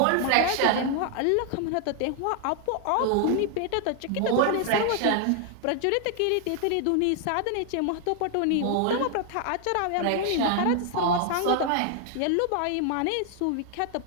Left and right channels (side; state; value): both; different; correlation 0.00